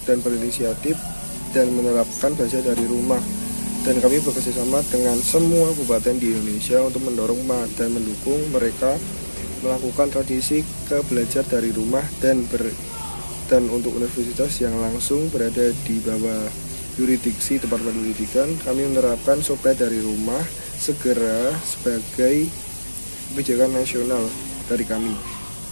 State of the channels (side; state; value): both; inverted; correlation -1.00